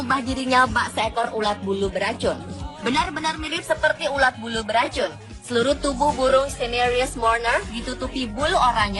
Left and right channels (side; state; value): both; identical; correlation 1.00